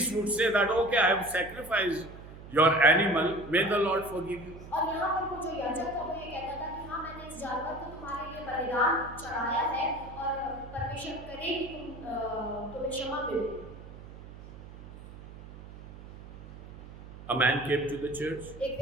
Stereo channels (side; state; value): right; noise; hum, 15 dB below the sound